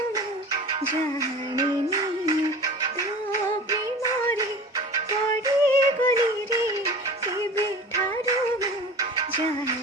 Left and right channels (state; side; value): normal; both; correlation 0.37